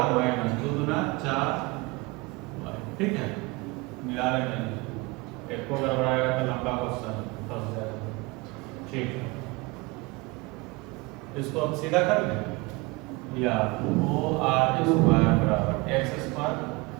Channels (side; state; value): left; quieter; 24.5 dB